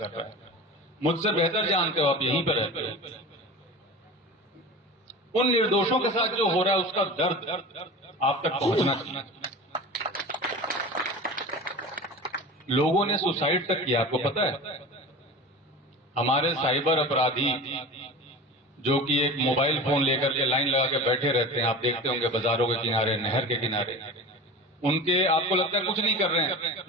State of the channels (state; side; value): normal; both; correlation 0.33